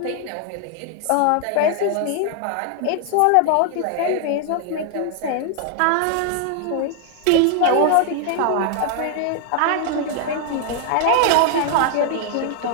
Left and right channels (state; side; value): different; both; correlation 0.00